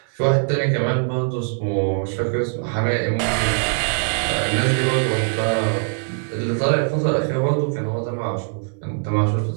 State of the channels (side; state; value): left; silent; 58 dB below the other